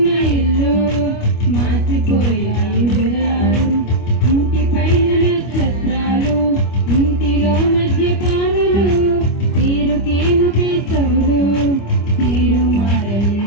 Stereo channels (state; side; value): late; right; 25 ms